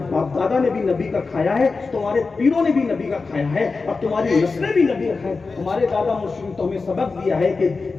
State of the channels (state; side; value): quieter; right; 4.2 dB